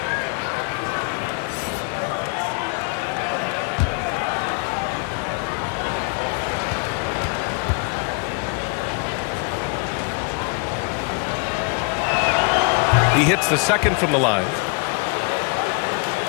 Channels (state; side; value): quieter; right; 34.8 dB